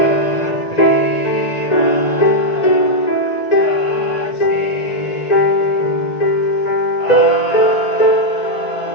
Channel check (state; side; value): late; right; 1.9 ms